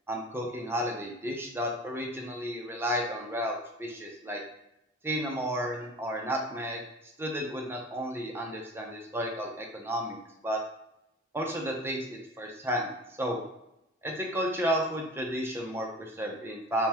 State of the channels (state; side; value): normal; both; correlation 0.38